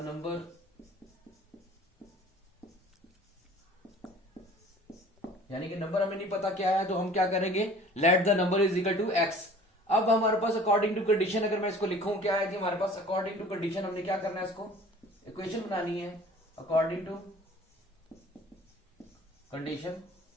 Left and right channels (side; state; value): both; normal; correlation 0.48